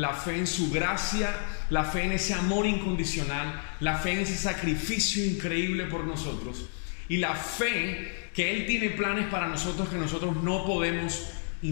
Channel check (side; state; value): right; silent; digital silence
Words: fe en su gracia, la fe en ese amor incondicional, la fe en ese sacrificio increíble por nosotros, y la fe que Él tiene planes para nosotros que nosotros no podemos